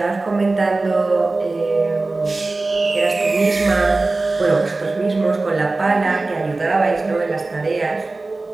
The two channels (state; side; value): quieter; left; 3.3 dB